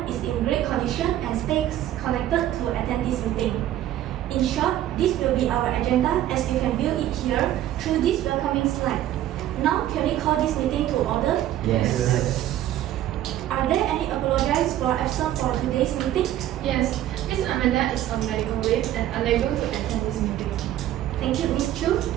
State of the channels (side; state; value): left; quieter; 12.8 dB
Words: is in great condition and stays connected to attend this meeting. In short, this will be our agenda as you can view it here through this welcoming slide. Now, can we call this meeting to order? Yes. Are there any apologies for absence for today's meeting? Yes, Ms. Amanda is on medical leave and unable to attend this meeting. Thank you, Ms. Chu.